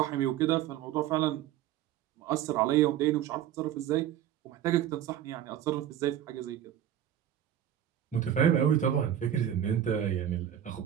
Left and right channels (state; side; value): quieter; left; 10.6 dB